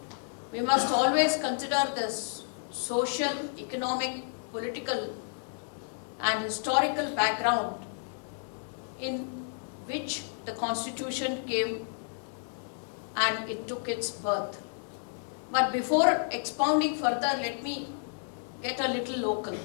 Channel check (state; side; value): silent; right; digital silence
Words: We must always consider the social, economic, political and historical background in which the Constitution came and it took its birth. But before expounding further, let me get a little local.